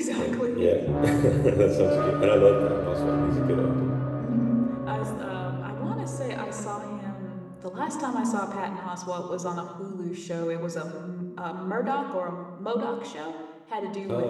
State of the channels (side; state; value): both; identical; correlation 1.00